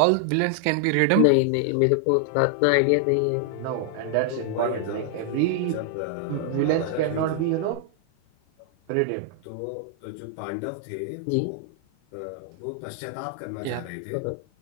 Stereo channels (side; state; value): both; different; correlation 0.00